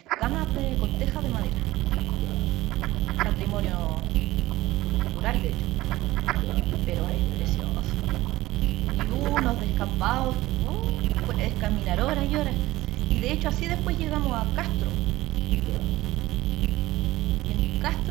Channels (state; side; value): quieter; left; 17.3 dB